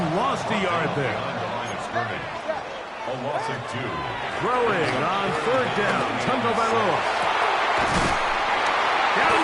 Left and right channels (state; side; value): identical; both; correlation 1.00